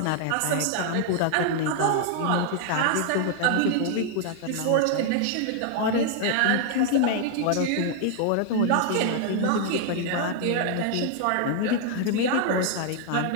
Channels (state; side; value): different; both; correlation 0.00